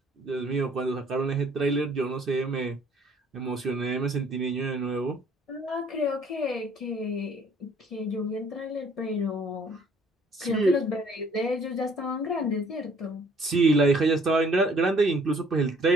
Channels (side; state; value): both; normal; correlation 0.59